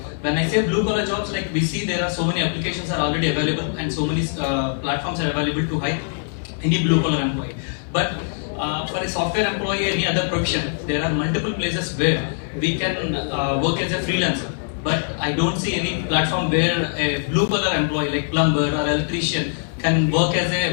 when I say blue collar jobs, like we see there are so many applications are already available and so many platforms are available to hire any blue collar employee, but for a software employee, any other profession, there are multiple places where we can work as a freelancer. But I don't see any platform where a blue collar employee like plumber or electrician can work as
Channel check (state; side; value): silent; right; digital silence